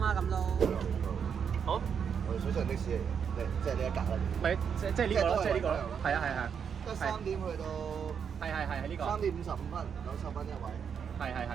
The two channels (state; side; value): quieter; left; 7.2 dB